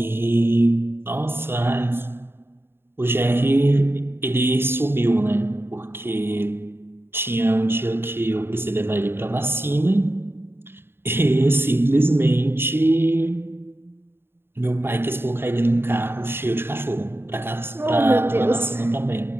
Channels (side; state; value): left; late; 0.11 ms